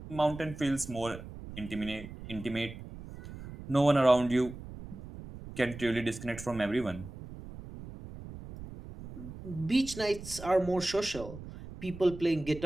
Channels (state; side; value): noise; right; rumble, 13 dB below the sound